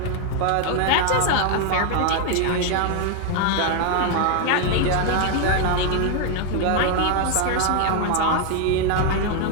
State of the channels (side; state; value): both; different; correlation 0.00